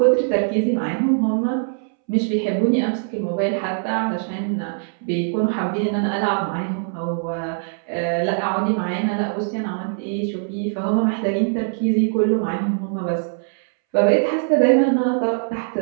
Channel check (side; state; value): left; silent; 65 dB below the other